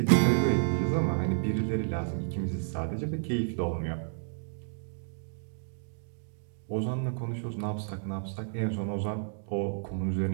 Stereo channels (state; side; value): silent; left; digital silence